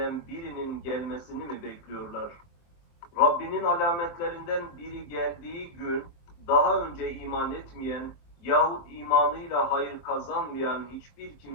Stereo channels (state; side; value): late; right; 23 ms